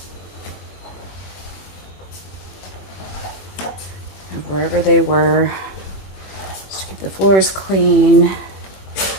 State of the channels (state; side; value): late; right; 21 ms